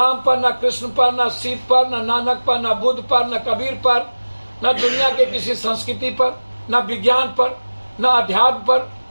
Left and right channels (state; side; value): inverted; both; correlation -1.00